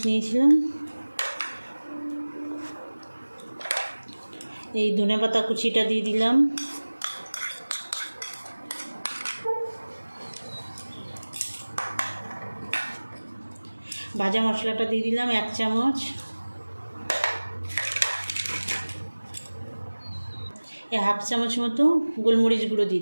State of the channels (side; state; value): both; inverted; correlation -1.00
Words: নিয়েছিলাম। এই ধনেপাতা কুচিটা দিয়ে দিলাম। ভাজা মশলাটা দিয়ে দিলাম 1 চামচ। এই 1/2 চামচ মতো গোলমরিচ গুঁড়ো দিয়ে